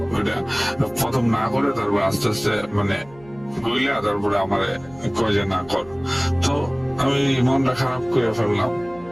ওইটা প্রথম না করে তারপর আস্তে আস্তে মানে গইলা তারপরে আমার কয় যে না কর। তো আমি মনটা খারাপ করে ফেললাম।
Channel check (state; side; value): noise; right; hum, 24 dB below the sound